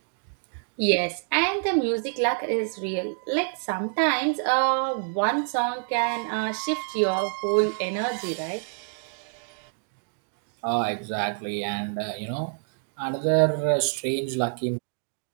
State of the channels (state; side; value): silent; left; digital silence